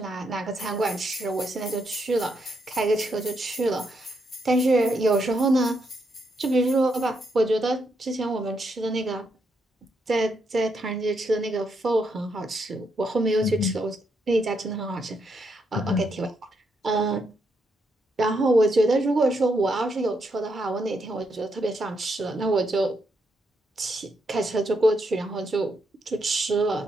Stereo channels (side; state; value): both; normal; correlation 0.79